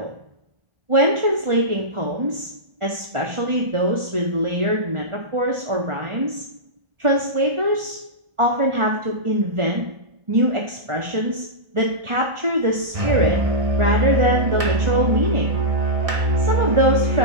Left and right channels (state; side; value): late; left; 1.4 ms